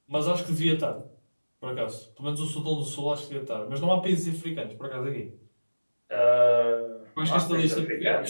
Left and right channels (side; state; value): both; inverted; correlation -1.00